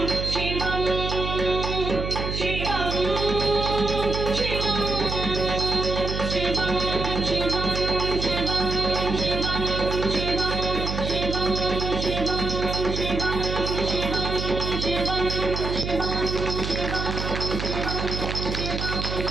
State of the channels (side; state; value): right; noise; hum, 4 dB below the sound